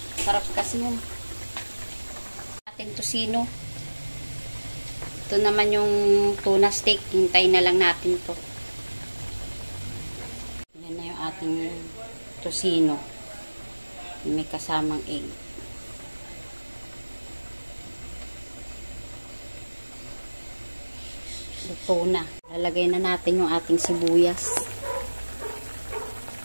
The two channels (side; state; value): both; inverted; correlation -1.00